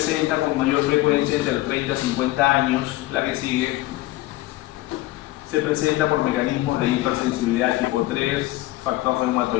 con mayor frecuencia entre los 30 y 50 años. La que sigue se presenta por mecanismos de hipersensibilidad tipo 3, factor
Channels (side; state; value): right; quieter; 17.3 dB